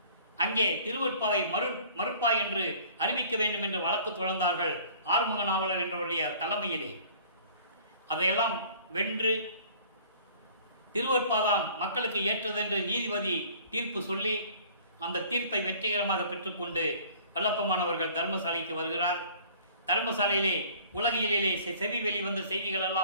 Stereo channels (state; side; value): inverted; both; correlation -0.51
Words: அங்கே திருவற்பாவை மறுப்பாய் என்று அறிவிக்க வேண்டும் என்று வழக்கு தொடர்ந்தார்கள் ஆறுமுக நாவலர் என்றவருடைய தலைமையிலே. அதையெல்லாம் வென்று திருவற்பாதான் மக்களுக்கு ஏற்றதென்று நீதிபதி தீர்ப்பு சொல்லி அந்த தீர்ப்பை வெற்றிகரமாக பெற்றுக்கொண்டு வல்லப்பமானவர்கள் தர்மசாலைக்கு வருகிறார். தர்மசாலையிலே உலகியலிலே செவி வெளிவந்த செய்திகள்